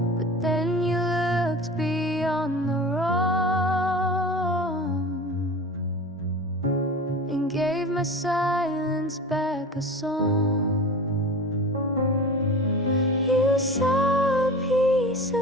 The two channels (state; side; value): normal; both; correlation 0.34